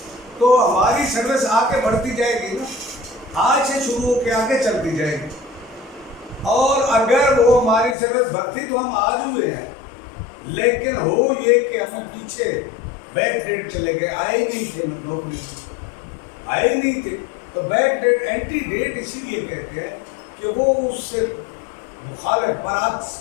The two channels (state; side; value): drops out; right; at 8.0 s